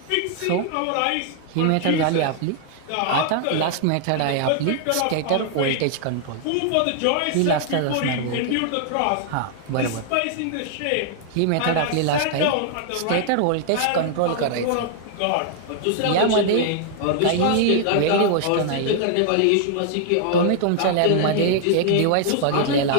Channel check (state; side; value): different; both; correlation 0.00